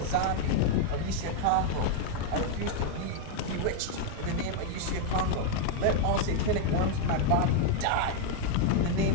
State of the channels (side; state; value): both; different; correlation 0.00